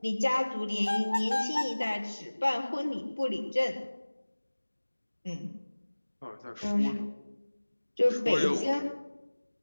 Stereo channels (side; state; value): both; inverted; correlation -1.00